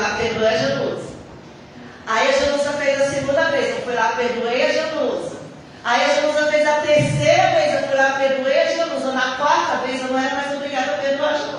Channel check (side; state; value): both; identical; correlation 1.00